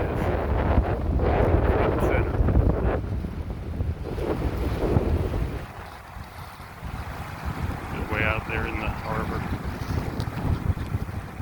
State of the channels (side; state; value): both; identical; correlation 1.00